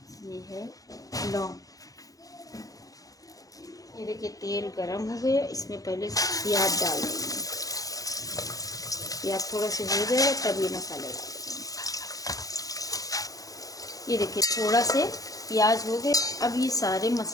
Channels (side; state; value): right; late; 0.17 ms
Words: ये है लौंग। ये देखिए तेल गरम हो गया, इसमें पहले प्याज डाल देंगे। प्याज थोड़ा सा हो जाएगा तब ये मसाले डालेंगे। ये देखिए थोड़ा से प्याज हो गए, अब ये सारे